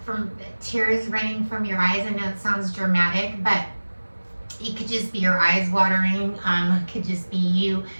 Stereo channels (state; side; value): inverted; both; correlation -1.00